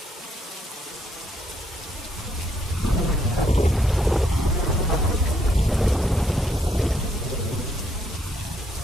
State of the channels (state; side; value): normal; both; correlation 0.72